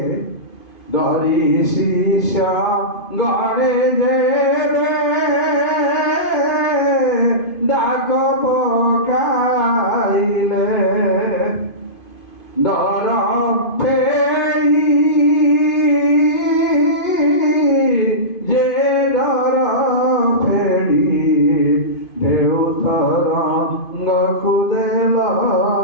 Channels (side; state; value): right; late; 2.5 ms